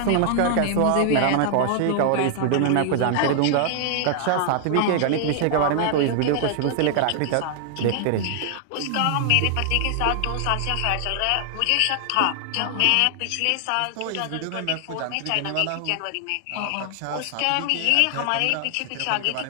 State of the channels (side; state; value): both; different; correlation 0.00